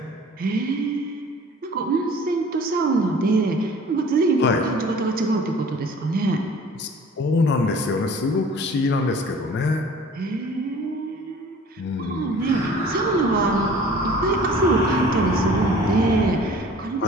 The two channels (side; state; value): both; normal; correlation 0.48